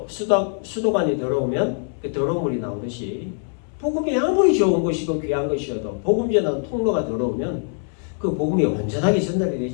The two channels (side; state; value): right; silent; 64 dB below the other